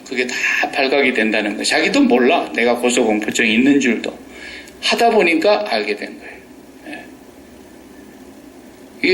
그게 다 발각이 된다는 거. 자기도 몰라. 내가 고소공포증이 있는 줄도. 하다 보니까 알게 된 거예요.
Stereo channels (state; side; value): identical; both; correlation 1.00